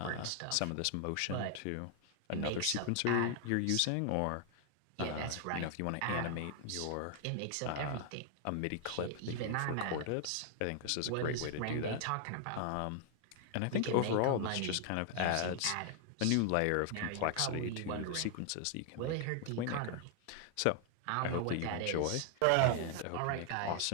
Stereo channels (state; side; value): different; both; correlation 0.00